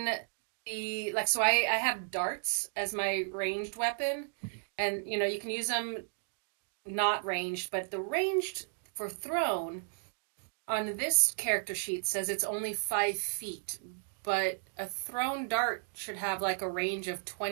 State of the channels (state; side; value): silent; left; digital silence